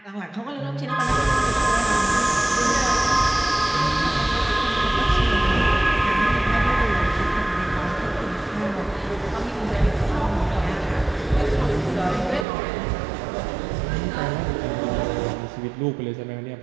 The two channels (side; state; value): left; drops out; at 12.5 s